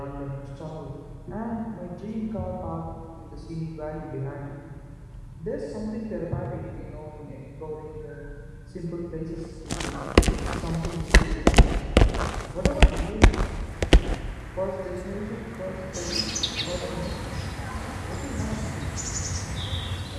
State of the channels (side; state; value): both; identical; correlation 1.00